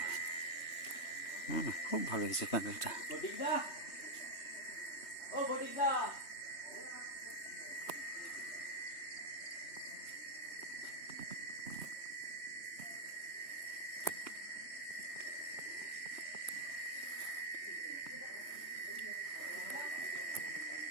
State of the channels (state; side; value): late; right; 3.2 ms